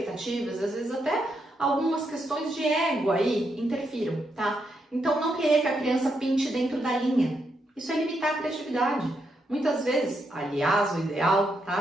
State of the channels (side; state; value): both; normal; correlation 0.80